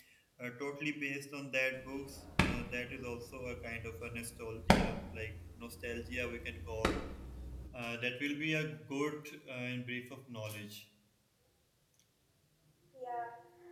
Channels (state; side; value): identical; both; correlation 1.00